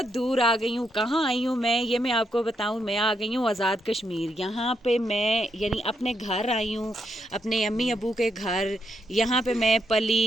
दूर आ गई हूँ। कहाँ आई हूँ मैं आपको बताऊँ। मैं आ गई हूँ आज़ाद कश्मीर। यहाँ पे मैं यानी अपने घर आई हूँ, अपने अम्मी अबू के घर। यहाँ पे मैं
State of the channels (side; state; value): both; normal; correlation 0.79